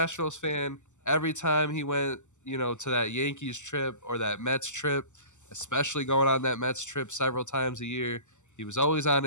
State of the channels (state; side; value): late; right; 0.84 ms